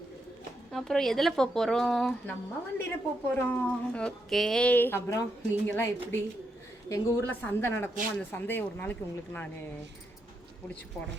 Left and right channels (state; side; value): normal; both; correlation 0.81